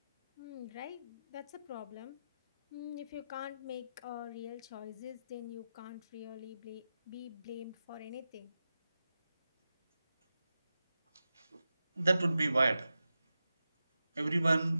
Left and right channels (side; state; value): both; inverted; correlation -0.91